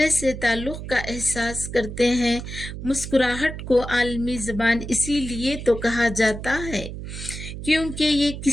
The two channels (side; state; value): right; noise; hum, 9 dB below the sound